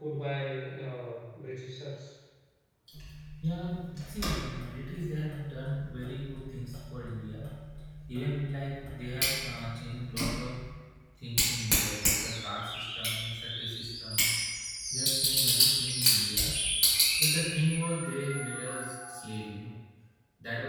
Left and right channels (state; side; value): identical; both; correlation 1.00